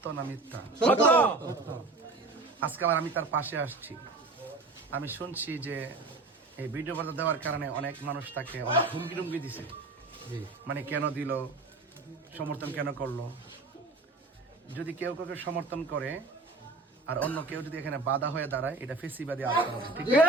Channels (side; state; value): left; quieter; 3.4 dB